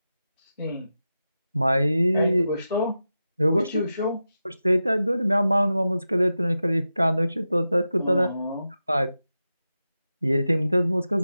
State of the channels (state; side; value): inverted; both; correlation -0.92